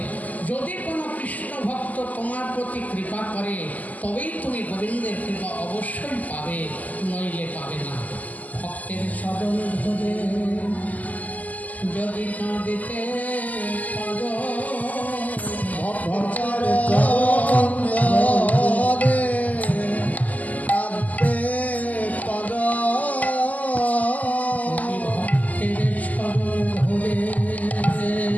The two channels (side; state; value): right; late; 0.078 ms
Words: যদি কোনো কৃষ্ণ ভক্ত তোমার প্রতি কৃপা করে তবেই তুমি গোবিন্দের কৃপা অবশ্যই পাবে, নইলে পাবে না। ভক্তের চরণ ধরে যদি কাঁদিতে পারো, ভক্তের চরণ ধরে কাঁদতে পারো, ভক্তের চরণ ধরে